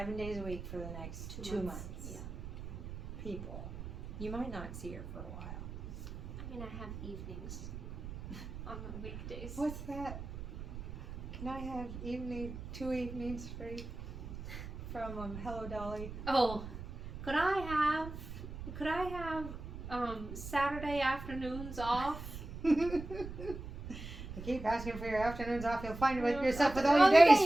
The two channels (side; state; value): right; noise; rumble, 9 dB below the sound